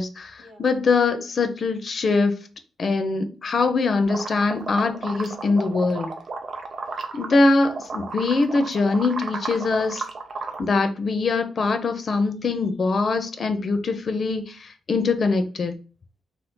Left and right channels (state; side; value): quieter; right; 3.0 dB